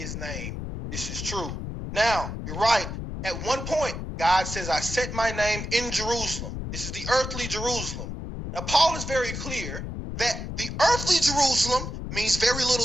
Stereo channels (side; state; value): left; noise; rumble, 6 dB below the sound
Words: name. This is true. Now, you're right. At one point, God says, "I set my name in Jerusalem." This is the earthly Jerusalem. Now, Paul is very clear that the earthly Jerusalem means very